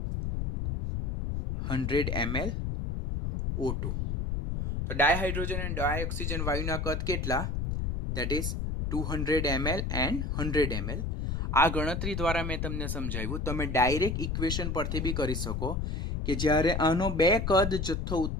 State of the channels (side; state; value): left; noise; rumble, 2 dB below the sound